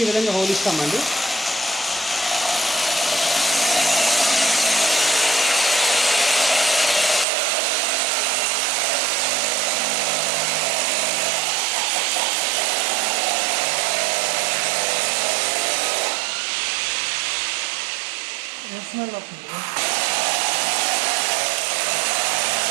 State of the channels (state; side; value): drops out; left; at 7.2 s